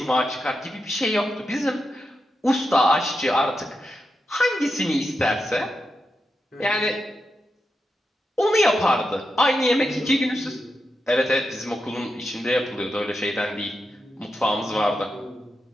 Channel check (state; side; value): normal; both; correlation 0.87